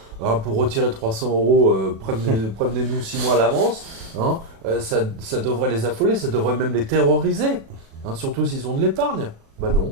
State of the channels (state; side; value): late; left; 36 ms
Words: pour retirer 300 euros, prévenez-nous 6 mois à l'avance. Hein. Ça devrait les affoler, ça devrait même les terroriser. Hein, surtout s'ils ont de l'épargne. Bah